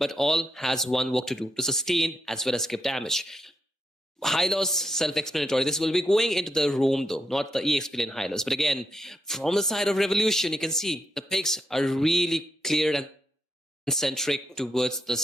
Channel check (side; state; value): both; normal; correlation 0.81